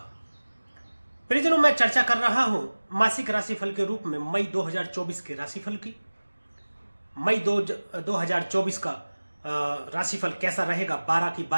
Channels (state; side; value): inverted; both; correlation -1.00